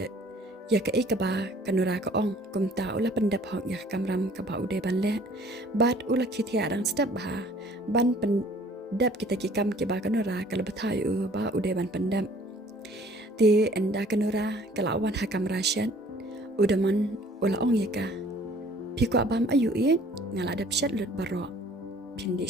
ya ka ikaba kanura ka ong kumta ula pendap hok ya kamram ka ba ude ban le bat ula khithia dang step ba ban pendap kita ki kam ki ba kanura kala bathai u ba ude ban pendap ti enda kanura kala wan hakam rasyan udaman ula ong ya ka pikwa bam ayu i ngala dap shat lut baro pindi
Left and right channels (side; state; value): both; normal; correlation 0.54